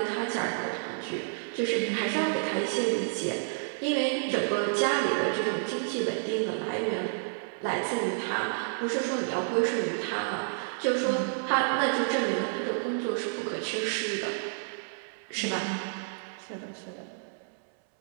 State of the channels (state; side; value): silent; left; 58 dB below the other